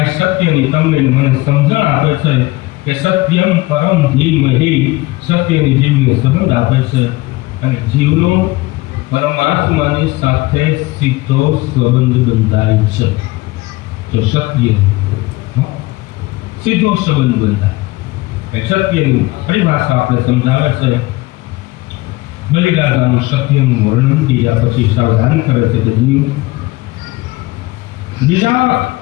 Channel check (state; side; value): quieter; right; 20.6 dB